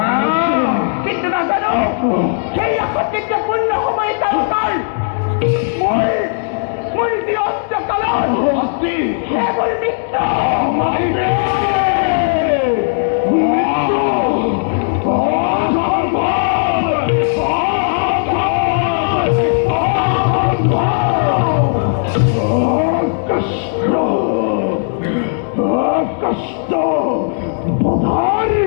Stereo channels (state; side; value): silent; right; digital silence